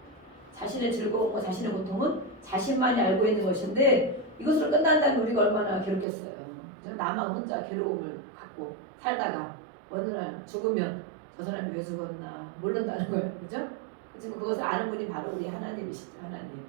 자신의 즐거움과 자신의 고통은 자신만이 알고 있는 것인데, 이것으로 끝난다면 우리가 얼마나 괴롭겠어요. 나만 혼자 괴로움을 갖고 살다가 어느 날 죽으면 저 사람이 왜 죽었나 모른다는 거예요. 그죠? 지금 그것을 아는 분이 바로 우리 하나님이시죠. 하나님.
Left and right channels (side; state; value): left; drops out; at 6.1 s